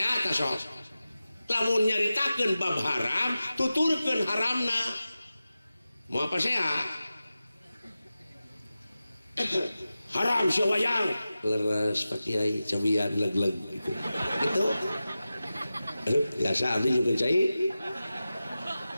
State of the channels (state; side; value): inverted; both; correlation -0.94